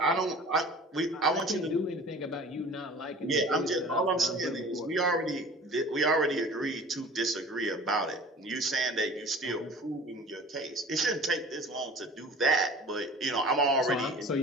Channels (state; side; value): normal; both; correlation 0.43